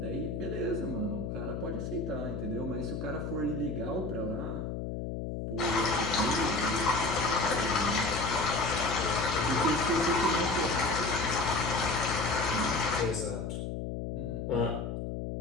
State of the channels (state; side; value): noise; left; hum, 4 dB below the sound